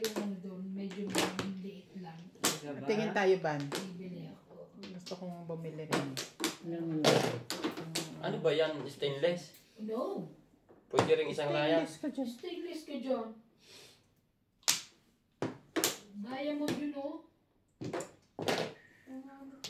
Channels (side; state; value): both; identical; correlation 1.00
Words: ano doon, medyo liit lang. Diba? Tingin tayo, Ban. Bibili ako. Gusto kong bumili rin. Yung Ano ba yan? Stainless? No! Pwede rin isang layas. Stainless ka dyan. Stainless ka dyan. Diamond yun, oh.